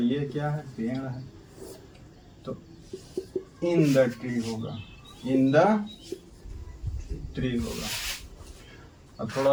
क्या है? पेड़ है। तो इन द ट्री होगा, इन द ट्री होगा। अब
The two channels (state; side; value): identical; both; correlation 1.00